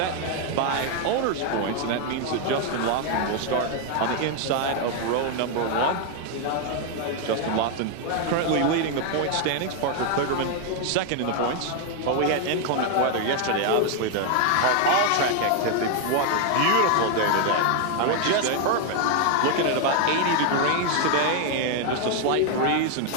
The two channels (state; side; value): different; both; correlation 0.01